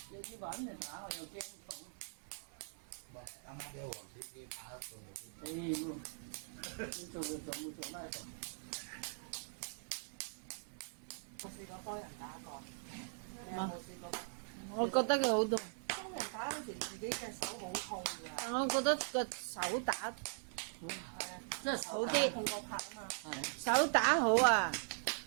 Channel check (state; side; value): silent; left; 50 dB below the other